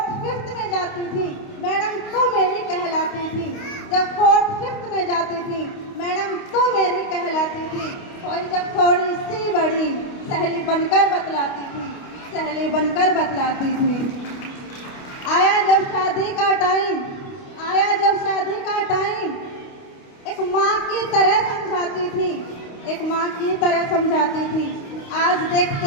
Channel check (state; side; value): late; right; 29 ms